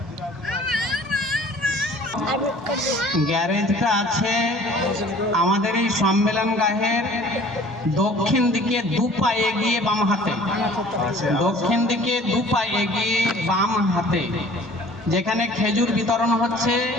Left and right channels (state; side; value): normal; both; correlation 0.50